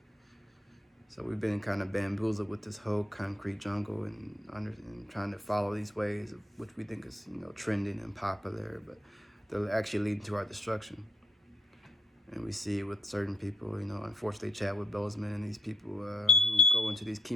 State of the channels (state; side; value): normal; both; correlation 0.76